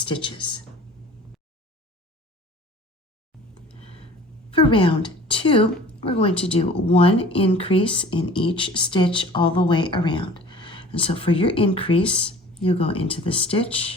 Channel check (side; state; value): both; normal; correlation 0.46